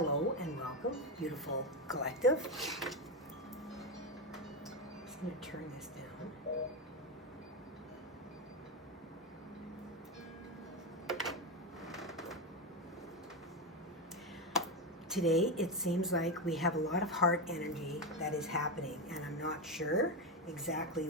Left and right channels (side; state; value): both; normal; correlation 0.12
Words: and welcome, beautiful collective. I'm just going to turn this down. Today, it seems like we have a lot of heart energy that is happening, and I'm not sure exactly